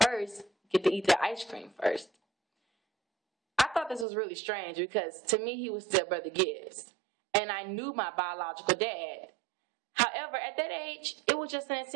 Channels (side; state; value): left; drops out; at 4.0 s